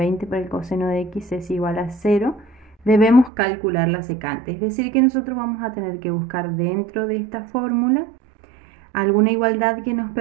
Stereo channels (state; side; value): drops out; left; at 3.3 s